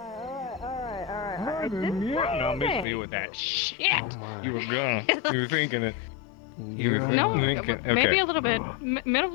No, miss me with that shit. Oh You were gonna. You were thinking it. You were No, thinking. maybe Okay. a little bit. Middle.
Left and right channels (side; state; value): right; drops out; at 2.9 s